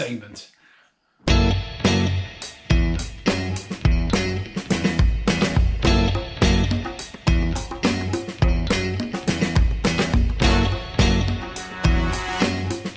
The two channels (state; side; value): identical; both; correlation 1.00